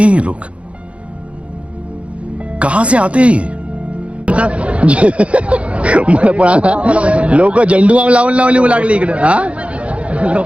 ये लोग, कहां से आते हैं ये. मला पण आता लोक झेंडू बाम लावून लावून लागले इकडे. हा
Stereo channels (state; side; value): late; left; 0.062 ms